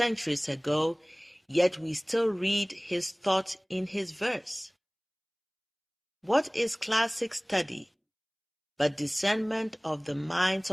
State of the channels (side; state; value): both; identical; correlation 1.00